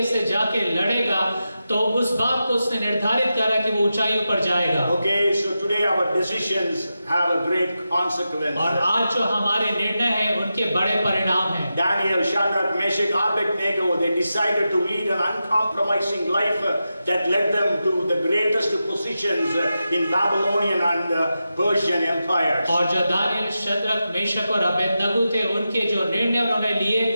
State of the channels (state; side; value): inverted; both; correlation -0.90